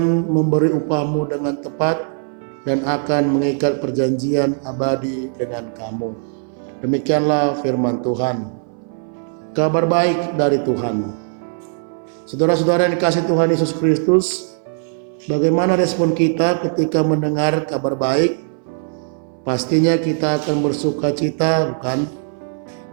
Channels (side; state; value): left; silent; 62 dB below the other